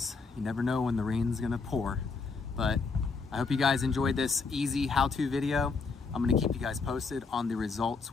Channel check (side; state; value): right; quieter; 4.6 dB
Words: You never know when the rain's gonna pour. But I hope you guys enjoyed this easy how-to video. I'm gonna keep you guys posted on the results